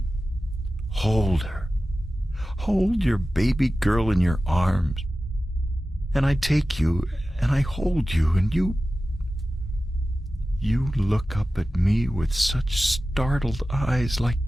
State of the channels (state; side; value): normal; both; correlation 0.95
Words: "Hold her. Hold your baby girl in your arms." And I take you, and I hold you, and you look up at me with such startled eyes, like